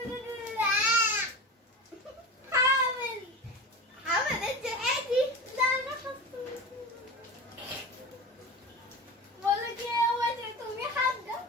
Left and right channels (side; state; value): both; normal; correlation 0.29